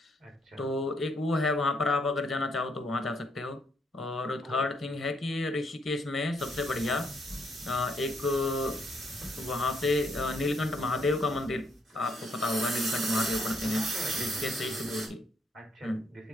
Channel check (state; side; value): normal; both; correlation 0.72